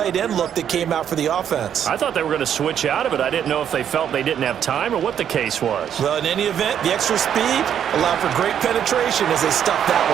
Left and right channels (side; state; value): left; quieter; 9.2 dB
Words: end look that came out for the offense. I thought they were going to switch out of it. I didn't know if they felt they didn't have time or what the case was. Well, in any event, the extra speed allowed for great penetration as they stuffed that